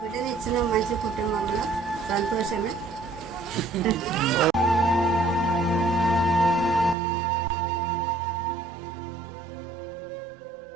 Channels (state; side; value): drops out; left; at 7.0 s